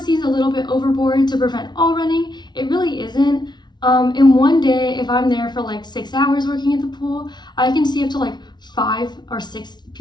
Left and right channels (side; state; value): right; late; 0.20 ms